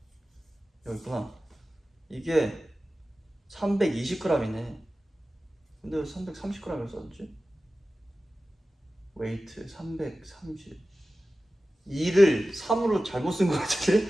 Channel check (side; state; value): both; normal; correlation 0.95